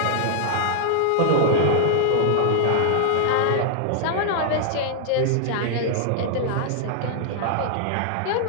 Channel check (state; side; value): different; both; correlation -0.01